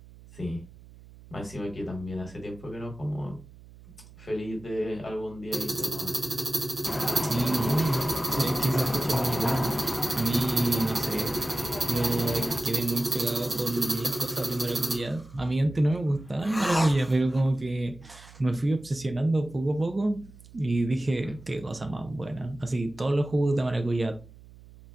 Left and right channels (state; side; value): noise; right; hum, 21 dB below the sound